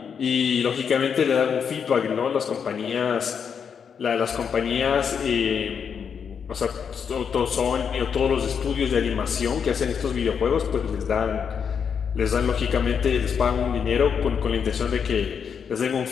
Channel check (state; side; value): quieter; right; 6.9 dB